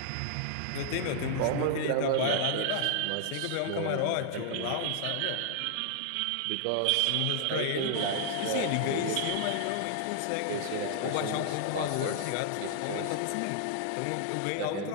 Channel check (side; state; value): both; different; correlation 0.00